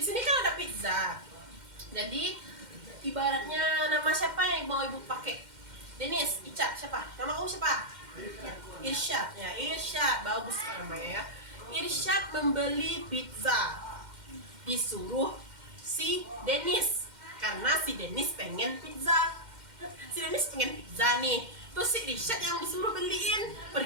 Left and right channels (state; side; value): late; left; 2.1 ms